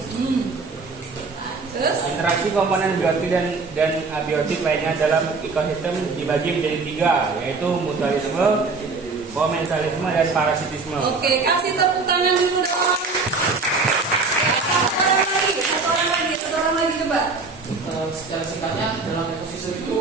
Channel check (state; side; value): quieter; left; 4.2 dB